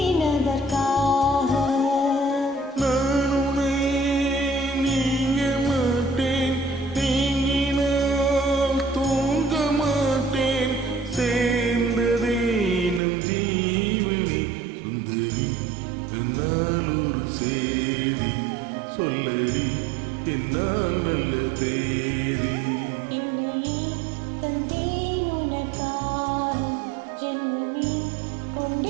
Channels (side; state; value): left; drops out; at 13.0 s